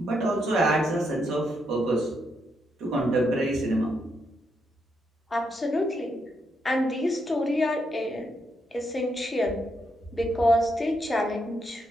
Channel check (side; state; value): both; normal; correlation 0.79